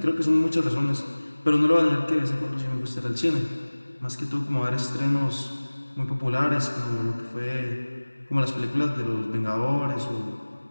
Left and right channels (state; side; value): inverted; both; correlation -1.00